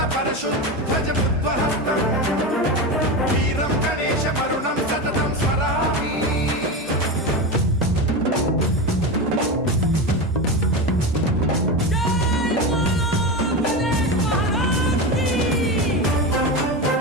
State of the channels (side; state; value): both; normal; correlation 0.20